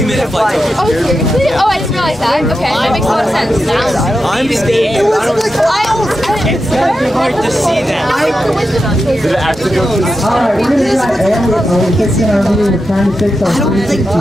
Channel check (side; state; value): both; normal; correlation 0.89